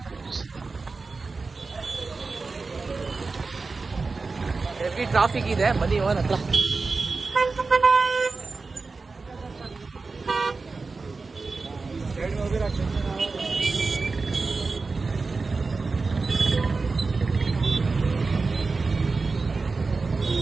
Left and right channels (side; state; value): left; quieter; 4.1 dB